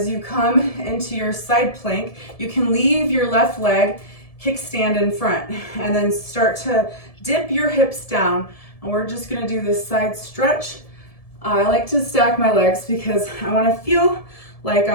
you come into your side plank, you can leave your left leg kickstand in front and then start to dip your hips down. And we're just gonna do this side stretch. I like to stack my legs because I wanna feel like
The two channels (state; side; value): late; right; 1.7 ms